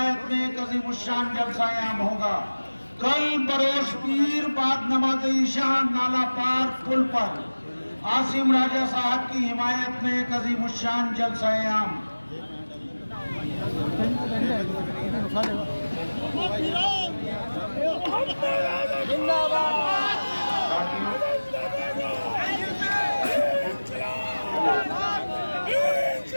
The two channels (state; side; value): inverted; both; correlation -1.00